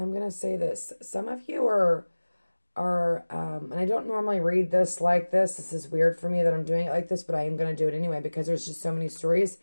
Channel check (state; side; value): inverted; both; correlation -1.00